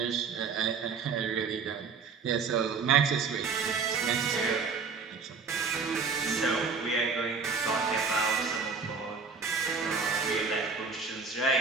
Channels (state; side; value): quieter; left; 5.1 dB